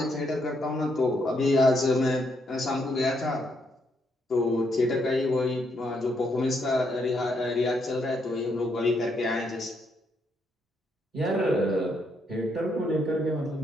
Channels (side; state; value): both; normal; correlation 0.76